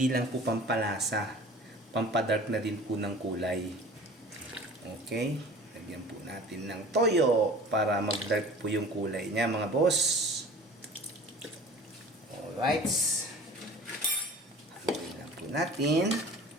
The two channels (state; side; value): normal; both; correlation 0.43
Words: lang po pampalasa, pampadark na din po ng kulay. Okay, lagyan po natin ng toyo para mag-dark po yung kulay niya mga boss. Alright. Haluin lang po natin.